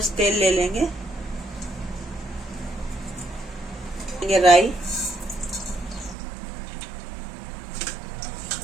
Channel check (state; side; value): drops out; left; at 6.2 s